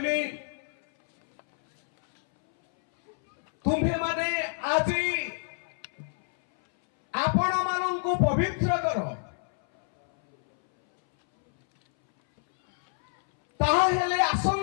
ତୁମ୍ଭେମାନେ ଆଜି ଆପଣମାନଙ୍କୁ ପବିତ୍ର କର, ତାହେଲେ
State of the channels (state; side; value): silent; right; 60 dB below the other